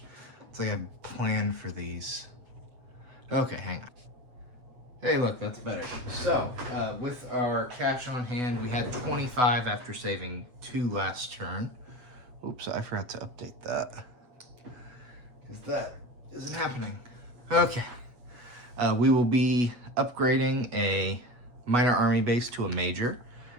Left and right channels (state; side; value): late; left; 7.9 ms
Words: It's like I planned for these. Okay, hang on. Hey, look, that's better. So, with our cash on hand, we had 25 after saving 2 last turn. Oops, I forgot to update that. Because that isn't happening. Okay. We will be upgrading a minor army base to a major